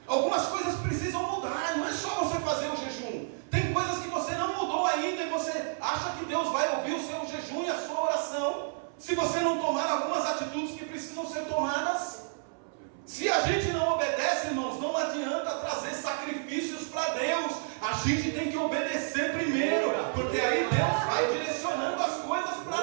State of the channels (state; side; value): silent; left; 58 dB below the other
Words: Algumas coisas precisam mudar, não é só você fazer o jejum. Tem coisas que você não mudou ainda, e você acha que Deus vai ouvir o seu jejum e a sua oração, se você não tomar algumas atitudes que precisam ser tomadas. Se a gente não obedece, irmãos, não adianta trazer sacrifícios para Deus. A gente tem que obedecer primeiro, porque aí Deus vai direcionando as coisas